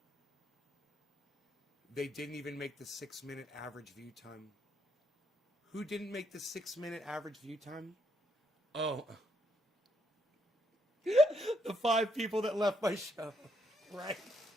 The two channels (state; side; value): normal; both; correlation 0.75